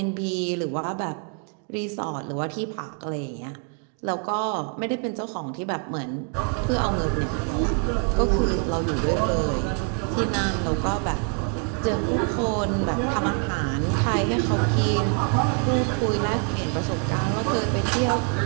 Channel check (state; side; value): quieter; left; 38.7 dB